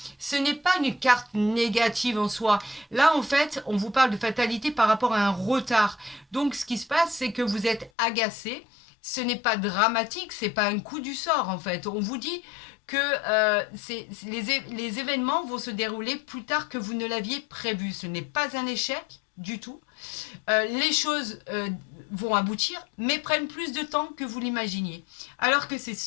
ce n'est pas une carte négative en soi. Là, en fait, on vous parle de fatalité par rapport à un retard. Donc, ce qui se passe, c'est que vous êtes agacé. Ce n'est pas dramatique, c'est pas un coup du sort, en fait. On vous dit que les événements vont se dérouler plus tard que vous ne l'aviez prévu. Ce n'est pas un échec du tout. Les choses vont aboutir, mais prennent plus de temps que vous l'imaginiez. Alors que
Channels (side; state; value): right; drops out; at 7.9 s